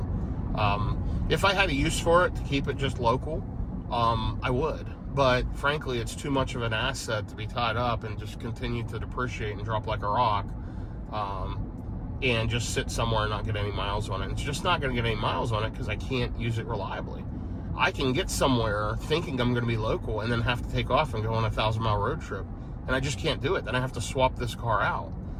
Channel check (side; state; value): both; identical; correlation 1.00